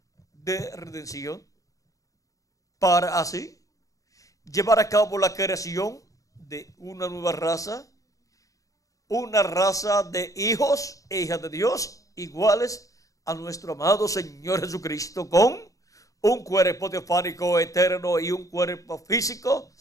de redención, para así llevar a cabo la creación de una nueva raza, una raza de hijos e hijas de Dios iguales a nuestro amado Señor Jesucristo, con un cuerpo teofánico eterno y un cuerpo físico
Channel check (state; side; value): late; right; 0.16 ms